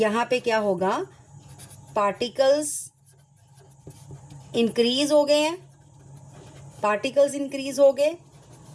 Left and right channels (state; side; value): identical; both; correlation 1.00